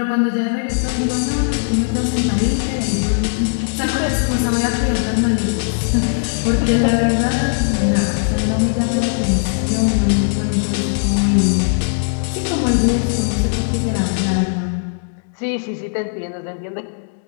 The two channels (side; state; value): right; silent; digital silence